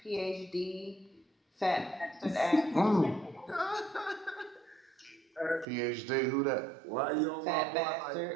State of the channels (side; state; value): left; drops out; at 5.7 s